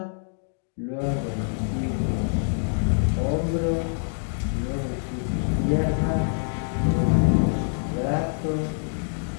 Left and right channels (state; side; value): silent; right; digital silence